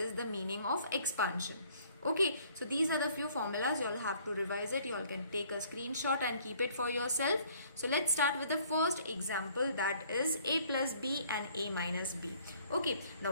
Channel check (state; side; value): inverted; both; correlation -0.59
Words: the meaning of expansion. Okay, so these are the few formulas. You all have to revise it. You all can take a screenshot and keep it for yourself. So let's start with the first example, that is a plus b and a minus b. Okay, now